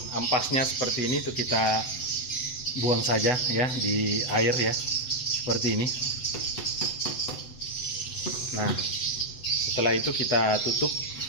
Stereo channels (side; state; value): right; late; 8.0 ms